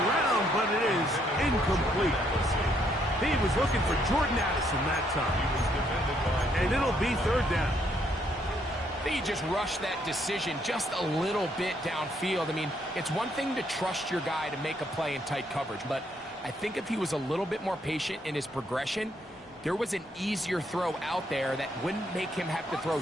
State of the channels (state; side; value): normal; both; correlation 0.71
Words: but it is incomplete. He was looking for Jordan Addison that time. And it'll be 3rd down. I think he just rushed that decision just a little bit downfield. I mean, it's one thing to trust your guy to make a play in tight coverage, but I think if he was a little bit more patient in his progression, there was an easier throw out there that wouldn't make him have to throw